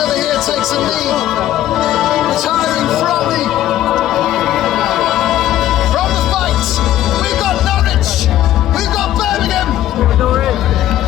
here takes a lead, retiring from the fight. We've got Norwich, we've got Birmingham.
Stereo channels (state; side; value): quieter; right; 12.9 dB